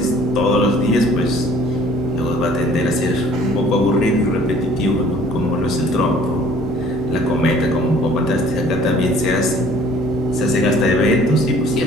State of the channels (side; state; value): both; normal; correlation 0.54